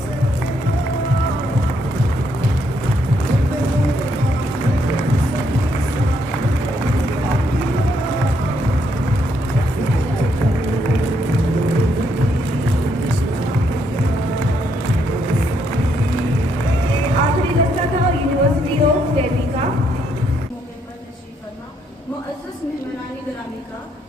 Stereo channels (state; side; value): normal; both; correlation 0.74